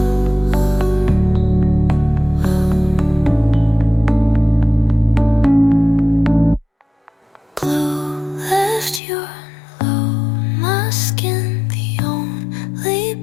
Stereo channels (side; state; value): right; drops out; at 9.0 s